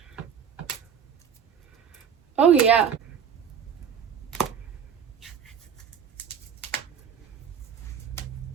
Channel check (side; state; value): left; quieter; 7.6 dB